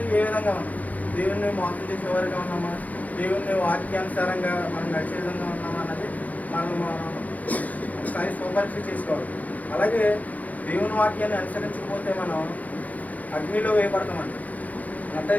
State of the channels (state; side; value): late; right; 0.076 ms